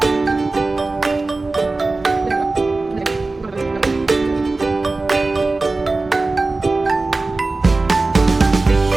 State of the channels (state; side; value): quieter; left; 3.4 dB